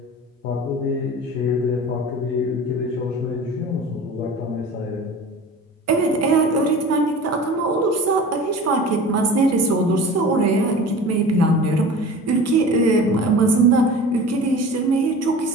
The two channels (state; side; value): normal; both; correlation 0.38